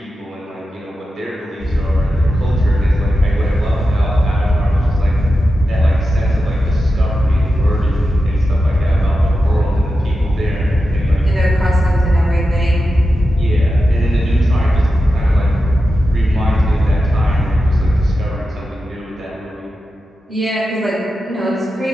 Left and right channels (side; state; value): both; normal; correlation 0.91